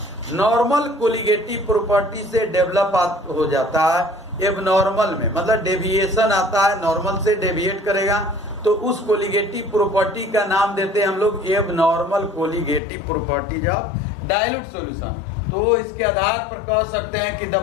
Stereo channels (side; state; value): right; drops out; at 12.8 s